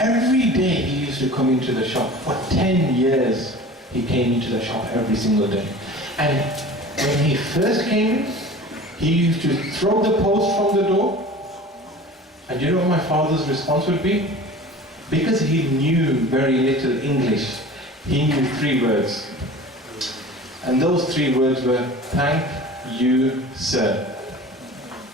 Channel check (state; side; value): normal; both; correlation 0.40